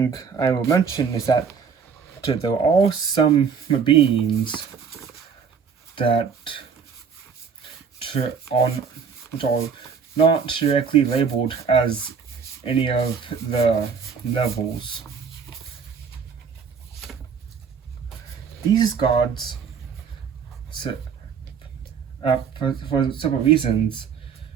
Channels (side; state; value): left; quieter; 6.3 dB